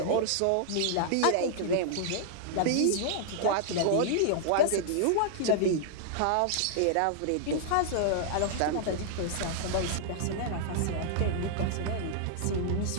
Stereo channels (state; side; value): different; both; correlation -0.01